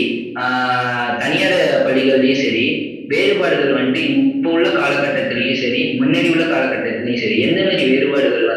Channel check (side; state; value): both; identical; correlation 1.00